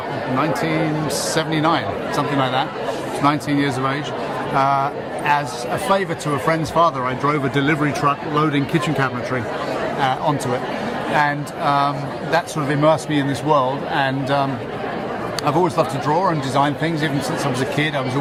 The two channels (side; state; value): both; identical; correlation 1.00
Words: something like that. 19 years of age. As a favour to a friend's father, I drove a delivery truck loading kitchen cabinetry onto it, and that sort of immersed me in this world. And I've always loved to draw and design things. Even since I was a kid, I was